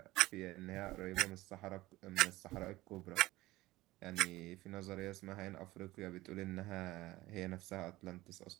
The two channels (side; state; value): left; quieter; 18.3 dB